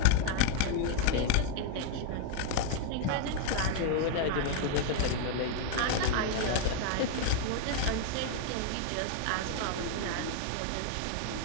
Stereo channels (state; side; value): different; both; correlation 0.00